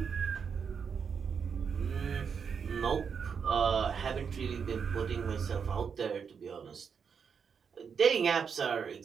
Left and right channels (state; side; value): quieter; left; 6.5 dB